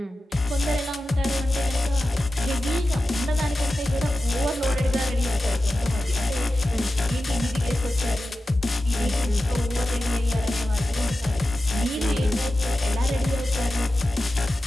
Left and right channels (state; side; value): normal; both; correlation 0.93